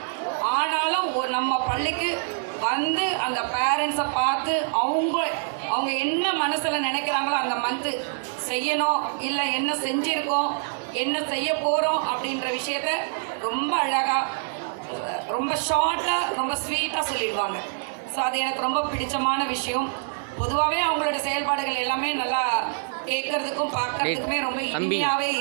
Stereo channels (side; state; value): left; silent; digital silence